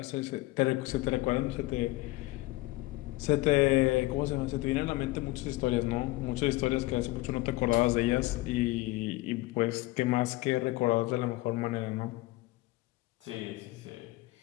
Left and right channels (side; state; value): right; quieter; 19.5 dB